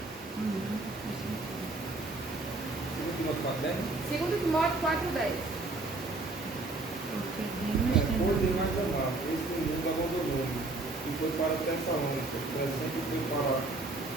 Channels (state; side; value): quieter; left; 3.2 dB